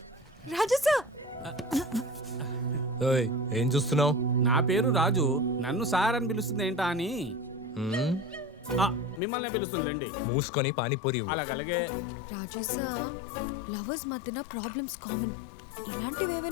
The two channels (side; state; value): right; drops out; at 9.2 s